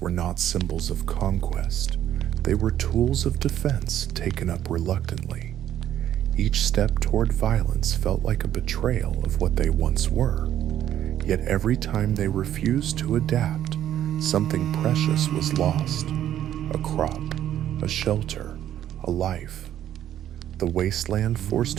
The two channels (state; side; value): quieter; left; 11.3 dB